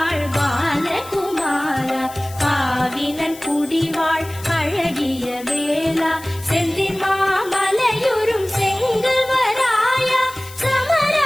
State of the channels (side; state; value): left; noise; hiss, 17 dB below the sound